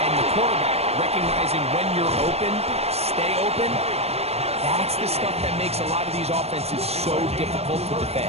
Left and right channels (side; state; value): left; late; 0.30 ms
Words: and the quarterback, recognizing when you're open, stay open, that's the stuff that makes a lot of these offenses so difficult to